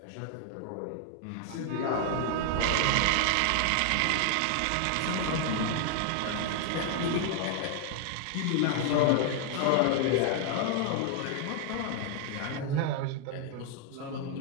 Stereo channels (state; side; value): different; both; correlation 0.00